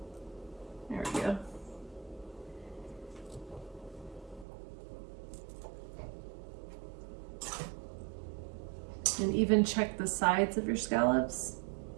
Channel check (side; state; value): left; drops out; at 4.5 s